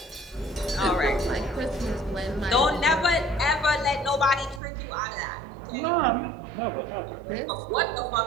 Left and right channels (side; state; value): left; drops out; at 4.6 s